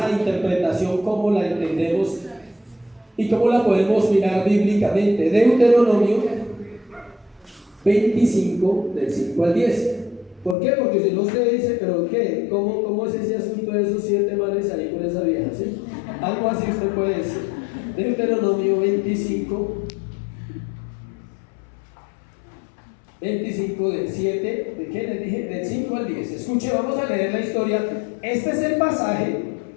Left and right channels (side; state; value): right; drops out; at 10.6 s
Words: interpretación, cómo la entendemos y cómo la podemos mirar bíblicamente. Deuteronomio 25, del 5 al 10. ¿Por qué? Porque si no usted dice, pero ¿qué? ¿Cómo es ese asunto de esos 7 manes ahí con esa vieja? ¿Sí? Algo así usted puede decir. Deuteronomio 25 del 7, ¿de qué les dije? Del 5 al 10. Escuche, vamos a leer la historia. Este es el pasaje